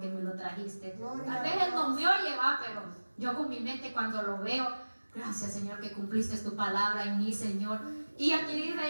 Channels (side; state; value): both; inverted; correlation -1.00